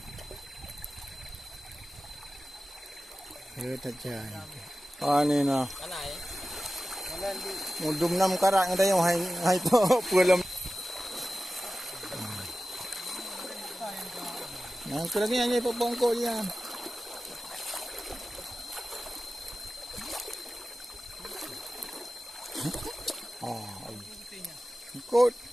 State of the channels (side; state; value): both; normal; correlation 0.95